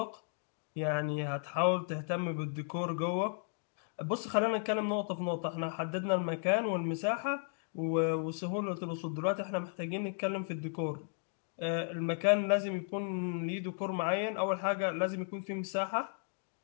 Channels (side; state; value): right; silent; digital silence